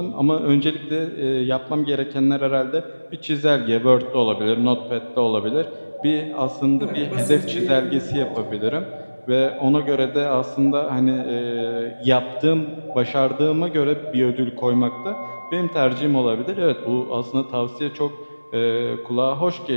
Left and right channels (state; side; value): inverted; both; correlation -1.00